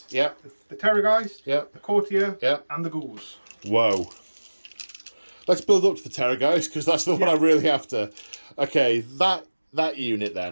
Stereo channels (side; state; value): both; inverted; correlation -1.00